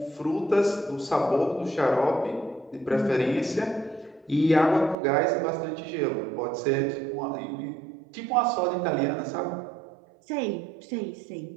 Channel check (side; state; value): left; drops out; at 5.0 s